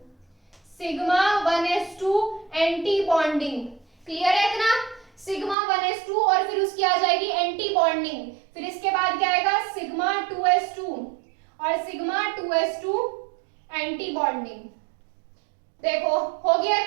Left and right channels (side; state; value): left; drops out; at 5.6 s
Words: sigma 1s2 anti bonding, clear है इतना, सिग्मा 1s2 और फिर उसकी आ जाएगी एंटी बॉन्डिंग, फिर इसके बाद क्या आएगा सिग्मा 2s2 और सिग्मा 2s2 एंटी बॉन्डिंग। देखो हो गया